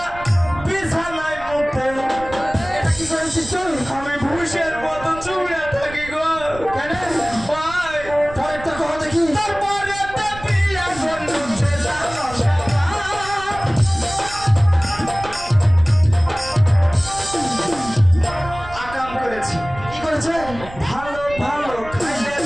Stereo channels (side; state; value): right; noise; rumble, 15 dB below the sound